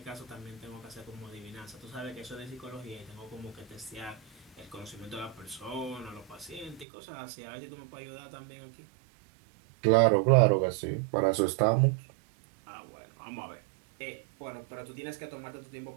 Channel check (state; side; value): drops out; left; at 6.9 s